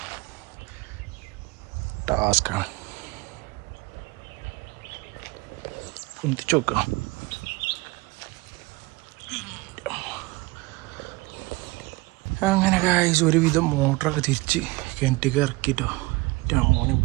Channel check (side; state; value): left; quieter; 23.4 dB